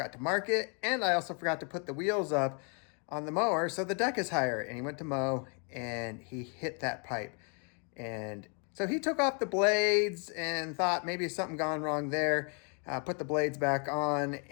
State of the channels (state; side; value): quieter; right; 38.1 dB